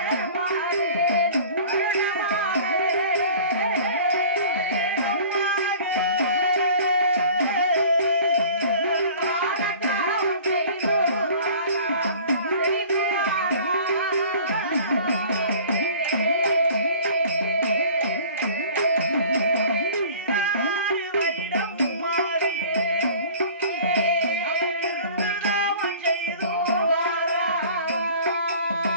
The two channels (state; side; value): inverted; both; correlation -0.45